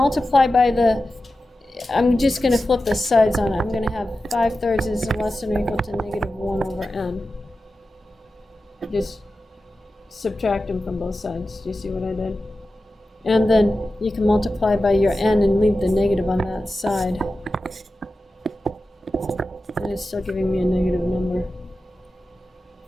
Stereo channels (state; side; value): normal; both; correlation 0.93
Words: by the, I'm just going to flip the sides on it. I'm going to have 5/3 is less than or equal to negative 1 over n. Just subtract them from both sides. Do you see what I did? And then you can multiply by your n and leave the negative on that side. And it's still giving me a negative number.